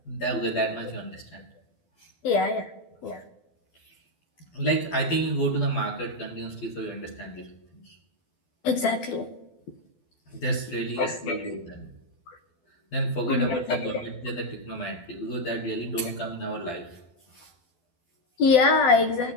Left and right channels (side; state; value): right; late; 12 ms